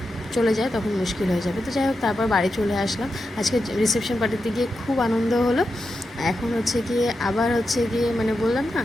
চলে যায় তখন মুশকিল হয়ে যাবে। তো যাই হোক, তারপর বাড়ি চলে আসলাম। আজকে রিসেপশন পার্টিতে গিয়ে খুব আনন্দ হলো। এখন হচ্ছে গিয়ে আবার হচ্ছে গিয়ে মানে বললাম না,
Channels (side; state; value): both; normal; correlation 0.88